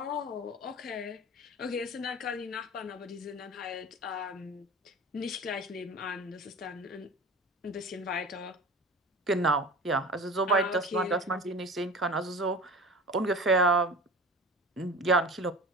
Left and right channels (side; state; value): both; normal; correlation 0.36